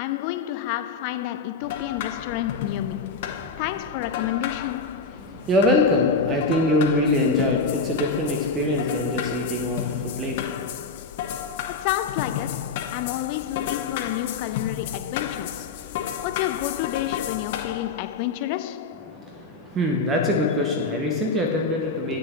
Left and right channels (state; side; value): quieter; right; 4.1 dB